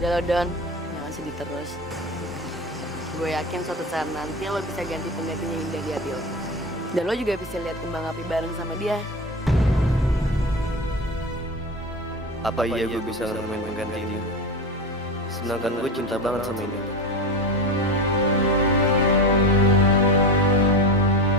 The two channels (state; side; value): normal; both; correlation 0.24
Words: Udah lo Don, jangan sedih terus. Gue yakin suatu saat nanti lo bisa ganti penggantinya Indah di hati lo. Dan lo juga bisa lihat kembang api bareng sama dia. Apa iya gue bisa nemuin pengganti ini? Sedangkan gue cinta banget sama ini.